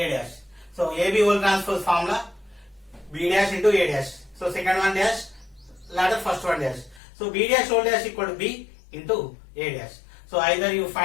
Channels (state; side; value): drops out; right; at 7.0 s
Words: dash. So, AB whole transpose formula, B dash into A dash. So, second one dash, latter first one dash. So, B dash whole dash equal to B into A dash. So, either you